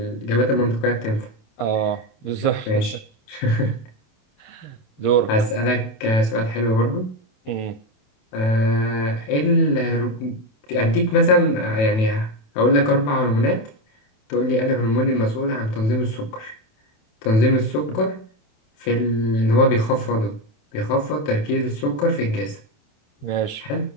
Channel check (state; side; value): late; right; 27 ms